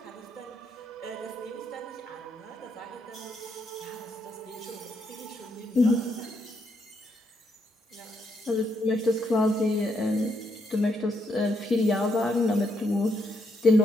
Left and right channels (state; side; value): normal; both; correlation 0.77